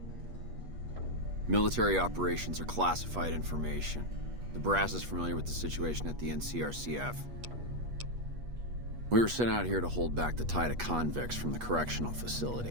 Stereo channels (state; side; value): late; left; 8.3 ms